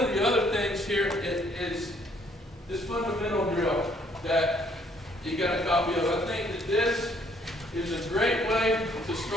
the other things here is this fundamental drill that you got a copy of. I think that this is a great way to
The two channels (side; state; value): both; normal; correlation 0.65